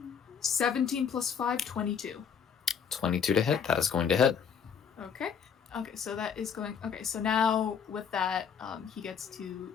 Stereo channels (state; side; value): quieter; right; 7.2 dB